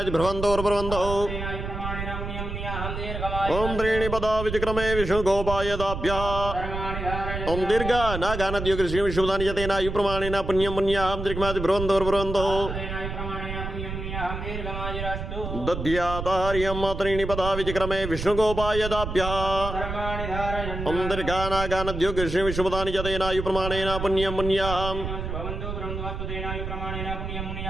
ओम त्रीणि पदा विचक्रमे विष्णुगोपायदाभ्यः ओम दीर्घानागानद्योगृष्णि विष्णुपदानि च तेनायु प्रमाणेन पुण्यं मुन्याहं दीर्घमादिभ्रवन्तोर्भ्रवन्तो दध्यातार्यं त्रीणि पदा विचक्रमे विष्णुगोपायदाभ्यः ओम दीर्घानागानद्योगृष्णि विष्णुपदानि च तेनायु प्रमाणेन पुण्यं मुन्याहं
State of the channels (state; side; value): noise; right; rumble, 6 dB below the sound